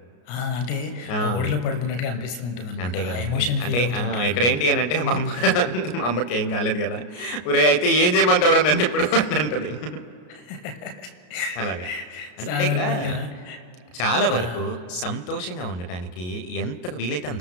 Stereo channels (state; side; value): late; right; 33 ms